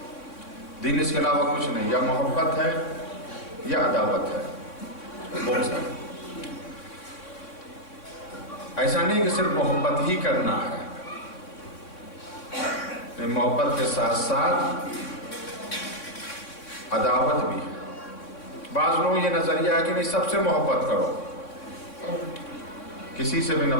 دین اس کے علاوہ کچھ نہیں، یا محبت ہے یا عداوت ہے، بغض ہے۔ ایسا نہیں کہ صرف محبت ہی کرنا ہے، محبت کے ساتھ ساتھ عداوت بھی ہے۔ بعض لوگوں یہ نظریہ ہے کہ نہیں سب سے محبت کرو، کسی سے بھی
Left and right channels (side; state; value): right; late; 3.6 ms